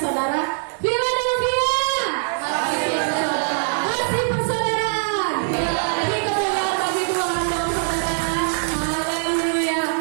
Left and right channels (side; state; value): left; silent; digital silence